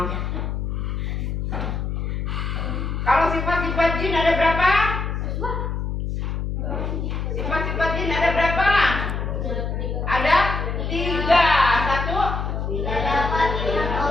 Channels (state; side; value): noise; left; hum, 2 dB below the sound